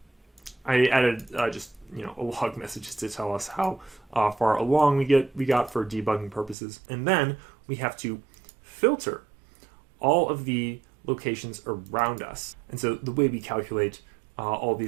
I added just a log message to tell us how far along we got for debugging purposes. And then we have to filter all of the locations around us. And so the way we calculate all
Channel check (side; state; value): left; drops out; at 6.6 s